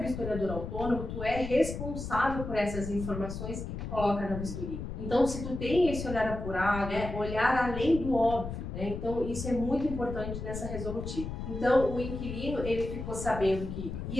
vistoriador autônomo, tu é responsável por essas informações que tu coloca na vistoria. Então, se tu tem esse olhar apurado, olhar além do óbvio, então isso é muito importante nessa resolutiva. Então, o inquilino, ele ficou sabendo que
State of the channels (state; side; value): noise; left; rumble, 6 dB below the sound